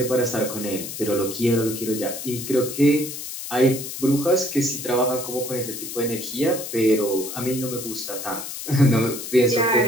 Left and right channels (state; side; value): noise; left; hiss, 8 dB below the sound